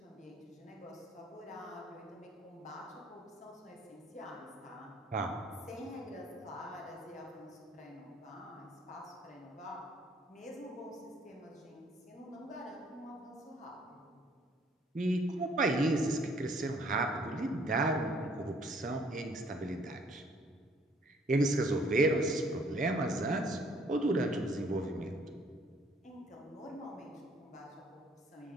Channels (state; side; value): normal; both; correlation 0.62